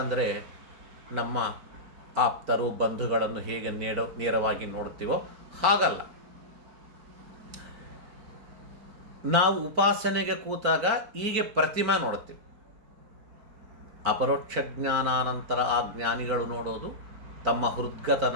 ಅಂದರೆ ನಮ್ಮ ಆಪ್ತರು ಬಂಧುಗಳನ್ನು ಹೇಗೆ ನೇರವಾಗಿ ನೋಡ್ತೀವೋ ಹಾಗಲ್ಲ. ನಾವು ಉಪಾಸನೆಗೆ ಕೂತಾಗ ಹೀಗೆ ಪ್ರತಿಮಾ ನೋಡ್ತೀವಿ. ಅಪರೋಕ್ಷ ಜ್ಞಾನಾನಂತರ ಆ ಜ್ಞಾನಿಗಳು ನೋಡೋದು ತಮ್ಮ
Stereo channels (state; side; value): late; left; 4.3 ms